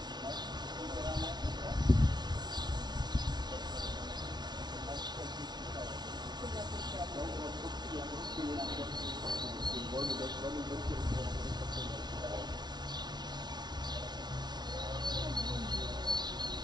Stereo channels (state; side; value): late; left; 0.20 ms